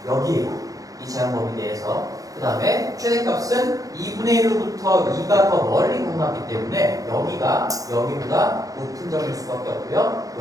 여기에요. 이 제한범위 내에서. 그 다음에 최대값은 2분의 1로부터 2가 더 멀리 가져갔기 때문에 여기가 여기보다 높은 점일 수밖에 없고요.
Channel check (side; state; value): left; late; 0.17 ms